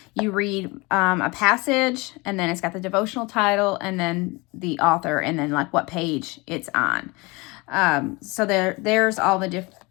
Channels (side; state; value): right; quieter; 25.3 dB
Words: You read a passage, and then it's got the devotional title, and then the author, and then like what page it's on. So there's all the different,